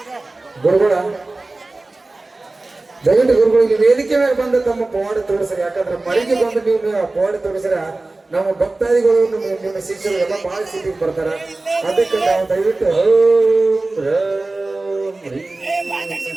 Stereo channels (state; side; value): quieter; left; 3.1 dB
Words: ಗುರುಗಳ ದಯವಿಟ್ಟು ಗುರುಗಳು ಇಲ್ಲಿ ವೇದಿಕೆ ಮೇಲೆ ಬಂದು ತಮ್ಮ ಪವಾಡ ತೋರಿಸ್ರಿ. ಯಾಕಂದ್ರೆ ಮರಿಗೆ ಬಂದು ನೀವು ಪವಾಡ ತೋರಿಸ್ರ ನಮ್ಮ ಭಕ್ತಾದಿಗಳು ನಿಮ್ಮ ಶಿಷ್ಯರು ಎಲ್ಲ ಬಹಳ ಸಿಟಿಗೆ ಬರ್ತಾರ. ಅದಕ್ಕೆ ನಾವು ದಯವಿಟ್ಟು ಓಂ ರಾಮ್ ರೀಂ